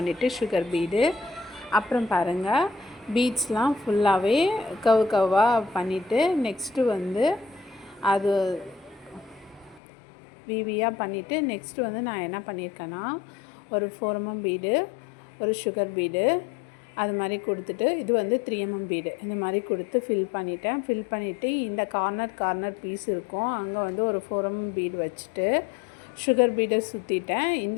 சுகர் பீடு, அப்புறம் பாருங்கள் பீட்ஸ்லாம் ஃபுல்லாகவே கவ்வாக பண்ணிவிட்டு நெக்ஸ்ட்டு வந்து அது விவியாக பண்ணிவிட்டு நெக்ஸ்ட்டு வந்து நான் என்ன பண்ணியிருக்கேன்னா, ஒரு 4 mm பீடு, ஒரு சுகர் பீடு அது மாதிரி கொடுத்துட்டு, இது வந்து 3 mm பீடு இந்த மாதிரி கொடுத்து ஃபில் பண்ணிட்டேன். ஃபில் பண்ணிவிட்டு இந்த கார்னர் பீஸ் இருக்கும், அங்கே வந்து ஒரு 4 mm பீடு வச்சுட்டு சுகர் பீடை சுற்றிட்டேன்.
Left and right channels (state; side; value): drops out; right; at 9.8 s